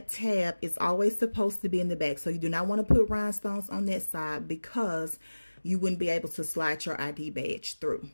tab is always supposed to be in the back. So you do not want to put rhinestones on that side, because you wouldn't be able to slide your ID badge through.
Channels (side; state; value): both; inverted; correlation -1.00